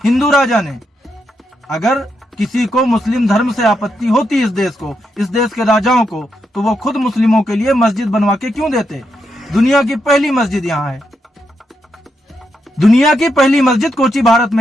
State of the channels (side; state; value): both; normal; correlation 0.82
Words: हिंदू राजा ने। अगर किसी को मुस्लिम धर्म से आपत्ति होती इस देश के राजाओं को, तो वो खुद मुस्लिमों के लिए मस्जिद बनवा के क्यों देते? दुनिया की पहली मस्जिद यहाँ है, दुनिया की पहली मस्जिद कोची भारत